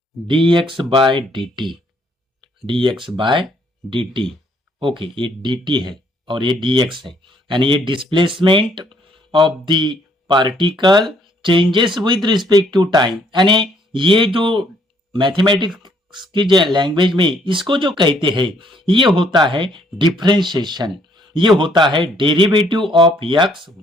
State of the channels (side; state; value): both; normal; correlation 0.66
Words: dx by dt, dx by dt। Okay, ये dt है और ये dx है, यानी ये displacement of the particle changes with respect to time. यानी ये जो मैथमेटिक्स की जो लैंग्वेज में इसको जो कहते हैं ये होता है डिफरेंशिएशन, ये होता है derivative of x